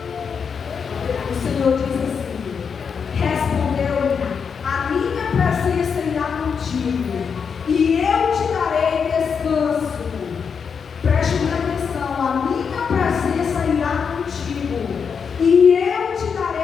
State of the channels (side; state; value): right; quieter; 6.3 dB